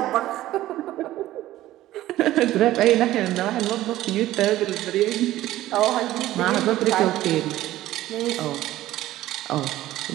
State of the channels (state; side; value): quieter; left; 14.9 dB